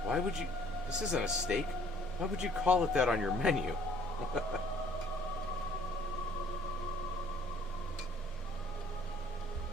Why would you... This isn't a steak. Why would you call it that on your menu?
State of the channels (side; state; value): both; normal; correlation 0.59